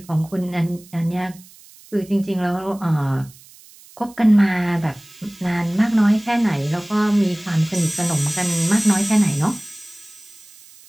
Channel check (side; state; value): right; noise; hiss, 23 dB below the sound